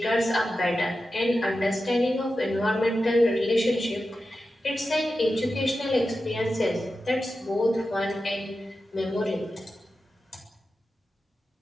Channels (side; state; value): both; normal; correlation 0.92